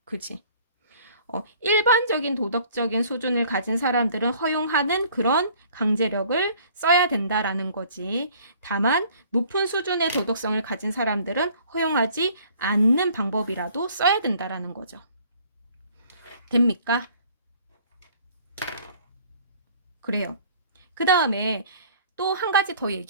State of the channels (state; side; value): inverted; both; correlation -0.55